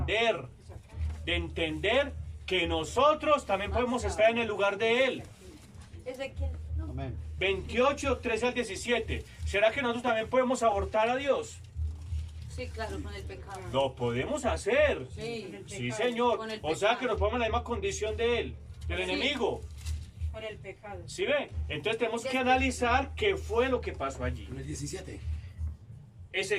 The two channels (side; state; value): both; identical; correlation 1.00